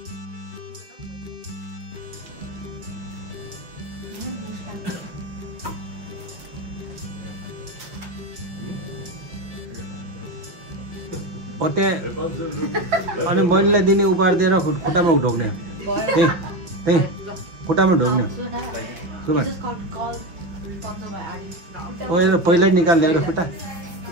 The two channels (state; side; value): late; left; 6.1 ms